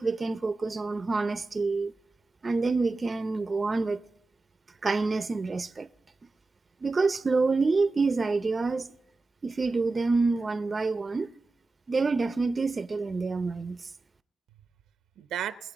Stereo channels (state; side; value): quieter; left; 3.5 dB